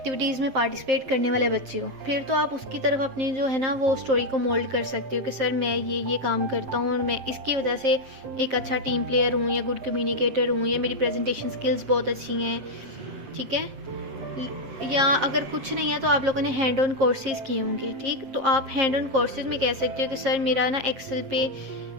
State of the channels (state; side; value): late; left; 7.8 ms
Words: में पार्टिसिपेट करने वाले बच्चे हो, फिर तो आप उसकी तरफ अपनी जो है ना वो स्टोरी को मोल्ड कर सकते हो कि सर मैं ये काम करता हूँ और मैं इसकी वजह से एक अच्छा टीम प्लेयर हूँ या गुड कम्युनिकेटर हूँ या मेरी प्रेजेंटेशन स्किल्स बहुत अच्छी हैं। ठीक है, या अगर कुछ नहीं है तो आप लोगों ने हैंड ऑन कोर्सेज़ किए होंगे। ठीक, तो आप हैंड ऑन कोर्सेज़ में कह सकते हो कि सर मेरा ना एक्सेल पे